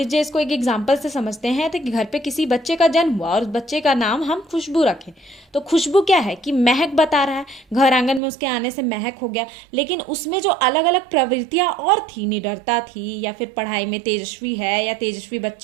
इसको एक एग्जाम्पल से समझते हैं, तो कि घर पे किसी बच्चे का जन्म हुआ और उस बच्चे का नाम हम खुशबू रखें, तो खुशबू क्या है कि महक बता रहा है, घर आंगन में उसके आने से महक हो गया। लेकिन उसमें जो अलग अलग प्रवृत्तियां और थी, निडरता थी, या फिर पढ़ाई में तेजस्वी है, या तेजस्वी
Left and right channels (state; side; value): drops out; left; at 8.2 s